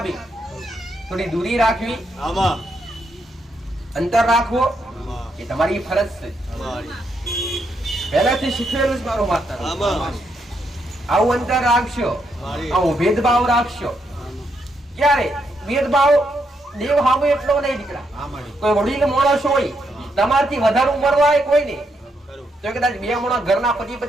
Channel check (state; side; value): normal; both; correlation 0.79